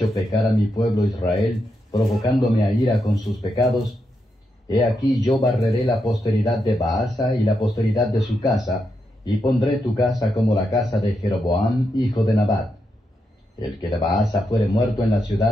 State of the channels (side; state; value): both; normal; correlation 0.84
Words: pecar a mi pueblo Israel, provocándome a ira con sus pecados. He aquí yo barreré la posteridad de Baasa y la posteridad de su casa, y pondré tu casa como la casa de Jeroboam, hijo de Nabat. El que de Baasa fuere muerto en la